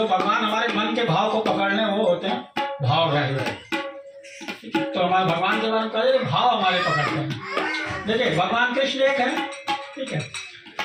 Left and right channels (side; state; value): both; identical; correlation 1.00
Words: भगवान हमारे मन के भाव को पकड़ने वो होते हैं भावग्राही। तो हमारे भगवान के बारे में कहे भाव हमारे पकड़ते हैं। देखिए भगवान कृष्ण एक है, ठीक है।